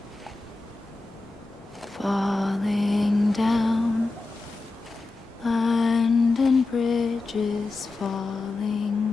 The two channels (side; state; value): right; quieter; 3.4 dB